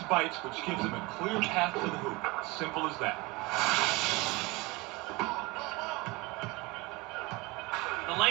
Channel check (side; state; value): left; quieter; 24.0 dB